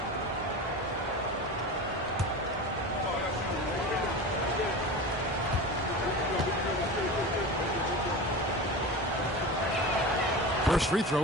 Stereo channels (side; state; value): both; normal; correlation 0.29